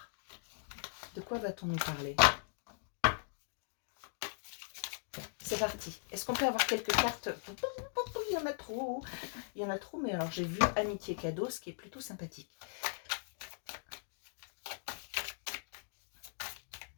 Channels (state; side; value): silent; right; digital silence